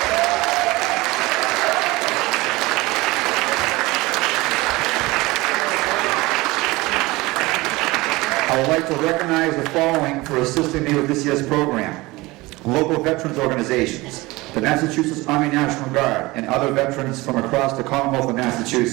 I would like to recognize the following for assisting me with this year's program. Local veterans organizations, the Massachusetts Army National Guard, and other veterans from across the Commonwealth of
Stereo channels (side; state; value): left; quieter; 21.4 dB